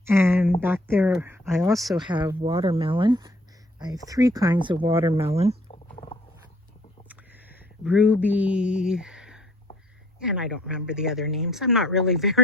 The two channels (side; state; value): both; normal; correlation 0.59